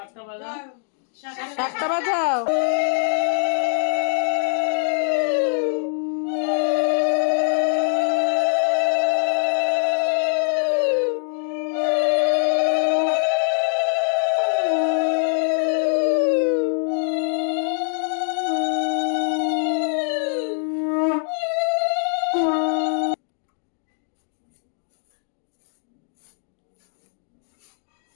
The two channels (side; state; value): right; silent; digital silence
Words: শাকটা বাজা। শাকটা বাজাও।